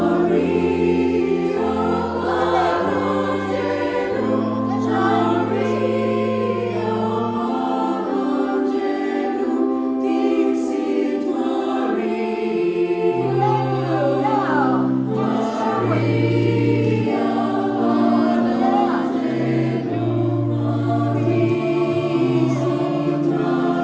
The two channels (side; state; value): both; identical; correlation 1.00